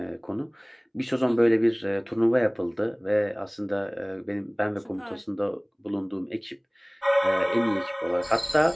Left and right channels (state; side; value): identical; both; correlation 1.00